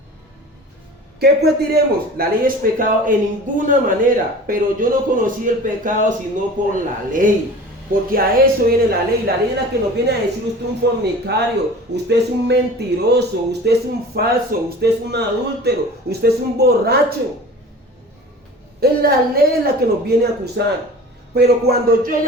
¿Qué pues diremos? La ley es pecado en ninguna manera, pero yo no conocí el pecado sino por la ley. Porque a eso viene la ley. La ley es la que nos viene a decir: usted es un fornicario, usted es un mentiroso, usted es un falso, usted es un adúltero, usted es un borracho. Es la ley la que nos viene a acusar. Pero cuando yo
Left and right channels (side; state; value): both; normal; correlation 0.40